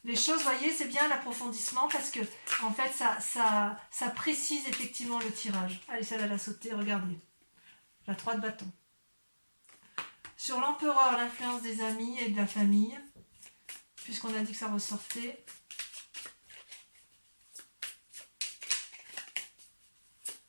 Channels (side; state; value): both; inverted; correlation -1.00